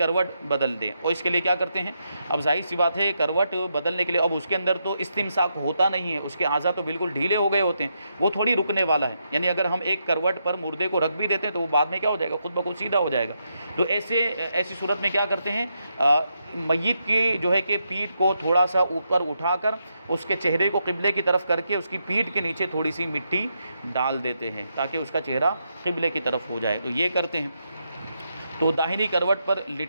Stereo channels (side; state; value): both; inverted; correlation -0.82